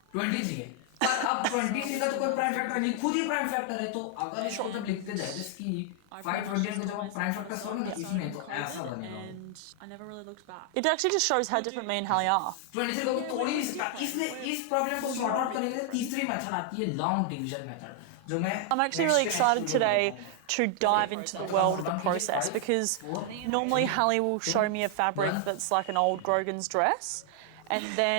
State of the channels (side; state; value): both; different; correlation 0.00